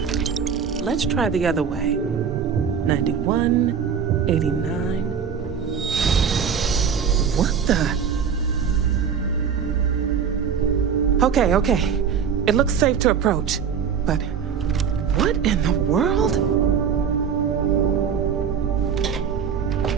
Let's try the other way. 91, 89. What the? Okay. It looks safe to approach. But what in the world?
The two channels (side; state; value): left; quieter; 7.1 dB